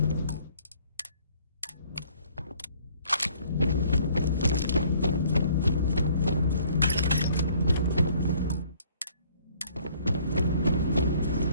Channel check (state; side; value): inverted; both; correlation -0.59